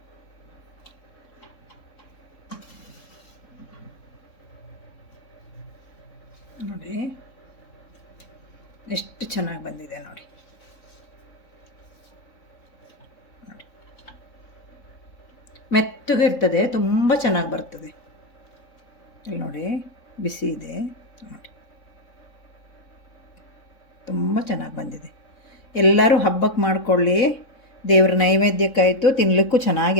ನೋಡಿ ಎಷ್ಟು ಚೆನ್ನಾಗಿ ಬಂದಿದೆ ನೋಡಿ. ಮೆತ್ತಗೆ ಇರ್ತದೆ, ತುಂಬ ಚೆನ್ನಾಗಿ ಬರ್ತದೆ. ಇಲ್ಲಿ ನೋಡಿ, ಬಿಸಿ ಇದೆ ನೋಡಿ, ತುಂಬ ಚೆನ್ನಾಗಿ ಬಂದಿದೆ. ಎಲ್ಲರೂ ಹಬ್ಬಕ್ಕೆ ಮಾಡಿಕೊಳ್ಳಿ. ದೇವ್ರ ನೈವೇದ್ಯಕ್ಕಾಯಿತು, ತಿನ್ನಲಿಕ್ಕೂ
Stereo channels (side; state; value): right; late; 3.7 ms